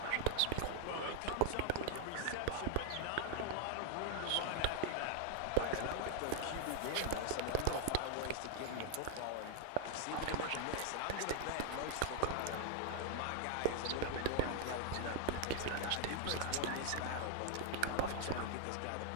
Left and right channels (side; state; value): both; different; correlation 0.00